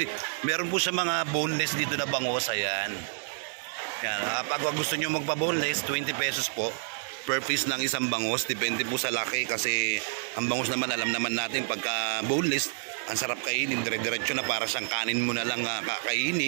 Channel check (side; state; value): left; silent; digital silence